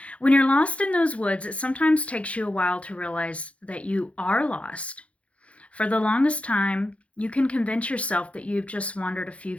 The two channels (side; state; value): right; late; 0.063 ms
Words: When you're lost in those woods, it sometimes takes you a while to realize that you are lost. For the longest time, you can convince yourself that you've just wandered a few